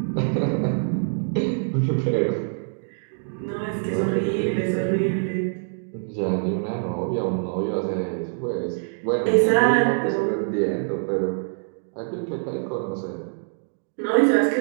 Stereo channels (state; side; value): silent; left; digital silence